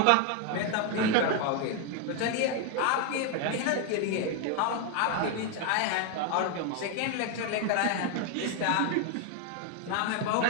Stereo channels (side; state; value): both; different; correlation 0.01